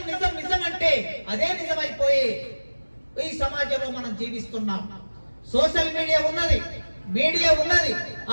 నిజం నిజం అంటే అదే నిజమైపోయి ఈ సమాజంలో మనం జీవిస్తున్నాం. సోషల్ మీడియా ఉన్నది, మీడియా ఉన్నది.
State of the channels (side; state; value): both; inverted; correlation -1.00